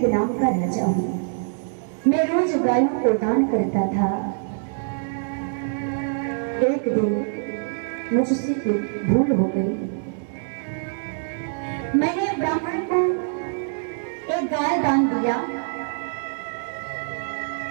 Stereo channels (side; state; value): left; silent; 62 dB below the other